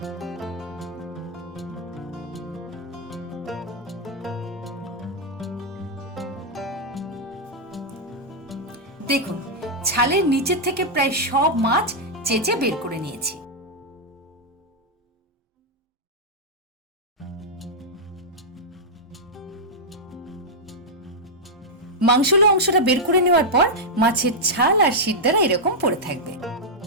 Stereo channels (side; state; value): both; normal; correlation -0.04